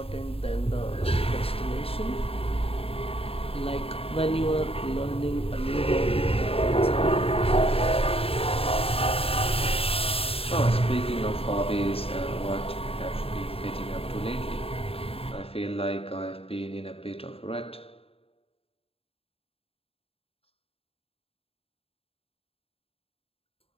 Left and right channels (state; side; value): late; right; 0.28 ms